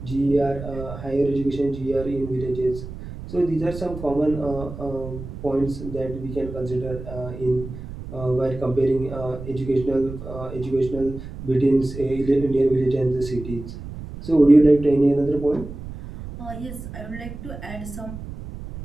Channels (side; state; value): right; noise; rumble, 11 dB below the sound